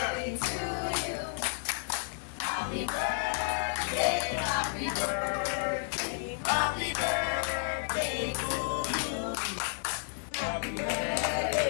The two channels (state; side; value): silent; right; digital silence